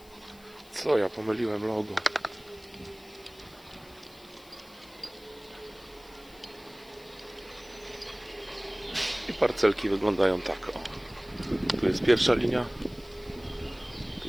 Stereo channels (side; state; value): left; noise; hiss, 25 dB below the sound